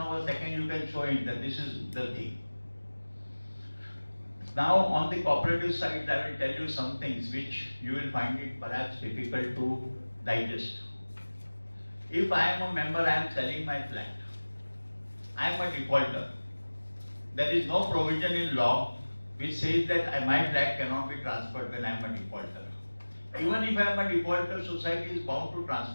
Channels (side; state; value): both; inverted; correlation -1.00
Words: a second you can show him that this is the thing. Now on the cooperative side, I will tell you some things which you will find it perhaps difficult to digest. If I am a member, I am selling my flat. I am a defaulter. There is no provision in law which says that my flat cannot be transferred when I am a defaulter. Even if I am a defaulter, society is bound to